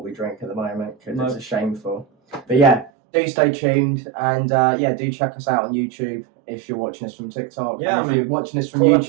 we drink at the moment because it's a shameful. But yeah, do stay tuned and do check us out on YouTube if you're watching us from TikTok. Yeah, if you're watching us from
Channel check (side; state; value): left; drops out; at 2.9 s